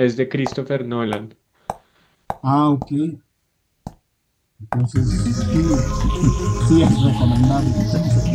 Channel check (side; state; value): both; identical; correlation 1.00